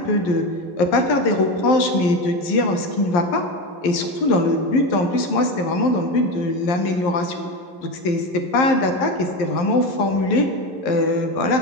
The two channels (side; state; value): right; late; 11 ms